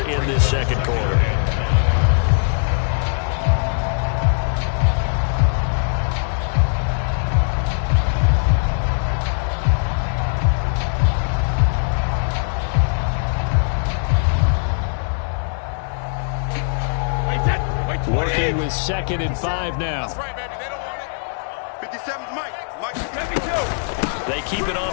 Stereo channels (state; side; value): silent; right; digital silence